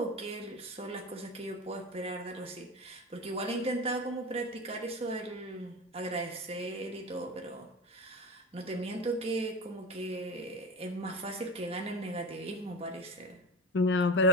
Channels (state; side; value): normal; both; correlation 0.29